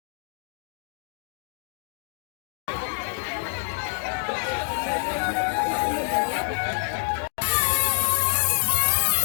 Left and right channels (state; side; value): silent; right; digital silence